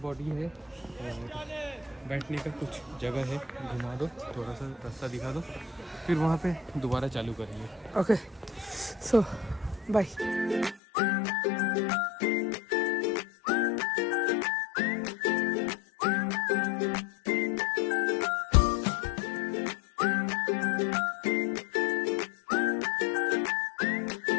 बॉडी है और बैठने का कुछ जगह है। घुमा दो, थोड़ा सा रास्ता दिखा दो, फिर वहाँ पे दोबारा चालू करेंगे। Okay so bye.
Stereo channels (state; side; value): drops out; right; at 10.8 s